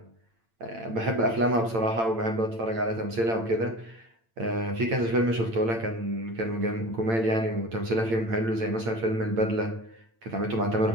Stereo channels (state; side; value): late; left; 8.9 ms